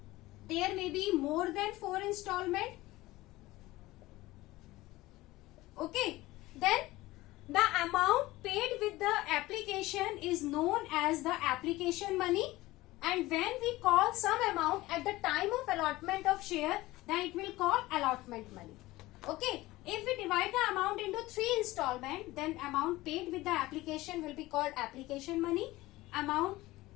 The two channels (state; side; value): quieter; right; 18.5 dB